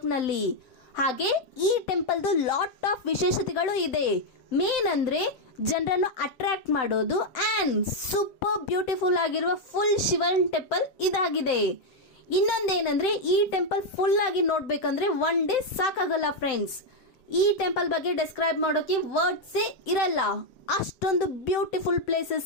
ಹಾಗೆ ಈ ಟೆಂಪಲ್ದು ಲಾಟ್ ಆಫ್ ವಿಶೇಷತೆಗಳು ಇದೆ. ಮೇನ್ ಅಂದ್ರೆ ಜನರನ್ನು ಅಟ್ರಾಕ್ಟ್ ಮಾಡೋದು ಆ್ಯಂಡ್ ಸೂಪರ್ ಬ್ಯೂಟಿಫುಲ್ ಆಗಿರುವ ಫುಲ್ ಶಿವನ್ ಟೆಂಪಲ್ ಇದಾಗಿದೆ. ಇನ್ನೊಂದೇನಂದ್ರೆ ಈ ಟೆಂಪಲ್ ಫುಲ್ ಆಗಿ ನೋಡ್ಬೇಕಂದ್ರೆ ಒನ್ ಡೇ ಸಾಕಾಗಲ್ಲ ಫ್ರೆಂಡ್ಸ್. ಈ ಟೆಂಪಲ್ ಬಗ್ಗೆ ಡಿಸ್ಕ್ರೈಬ್ ಮಾಡೋಕೆ ವರ್ಡ್ಸೇ ಇರಲ್ಲ, ಅಷ್ಟೊಂದು ಬ್ಯೂಟಿಫುಲ್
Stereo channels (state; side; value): late; right; 7.8 ms